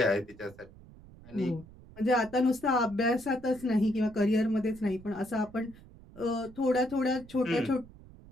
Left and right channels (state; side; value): noise; right; rumble, 21 dB below the sound